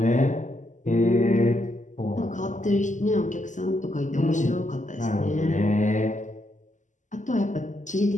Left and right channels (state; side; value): late; right; 0.36 ms